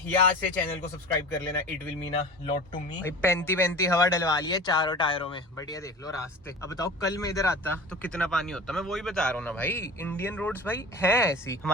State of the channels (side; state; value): both; normal; correlation 0.36